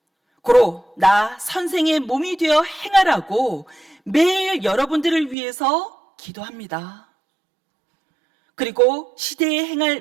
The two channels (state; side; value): drops out; left; at 5.4 s